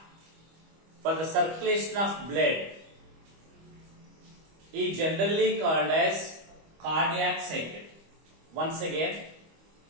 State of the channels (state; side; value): late; left; 25 ms